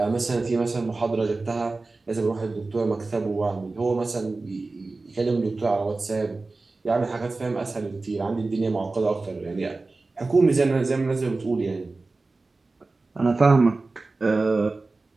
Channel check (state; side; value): quieter; left; 3.5 dB